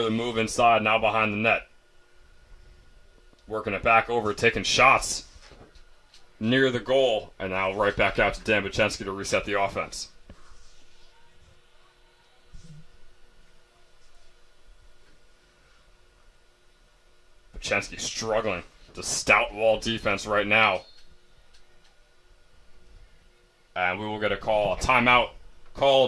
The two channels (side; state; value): both; identical; correlation 1.00